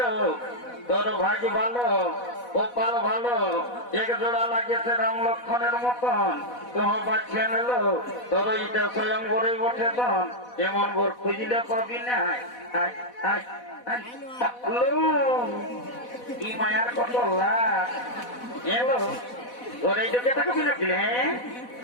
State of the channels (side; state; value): right; late; 4.1 ms